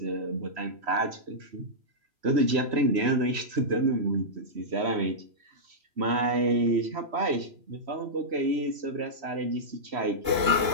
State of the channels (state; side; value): late; left; 3.1 ms